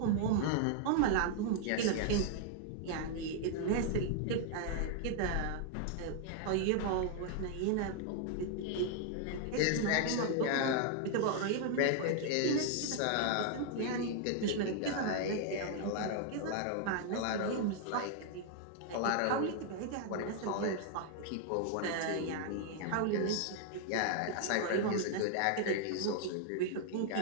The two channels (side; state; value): both; different; correlation 0.00